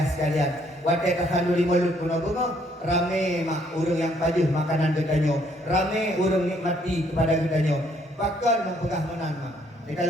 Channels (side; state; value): both; normal; correlation 0.67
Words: sekalian. Wadah tasaduri mulut guna bengah. Rame mak urang yang pajuh makanan katanya. Rame urang nikmati kepada katanya. Bahkan mempegah menan mak. Di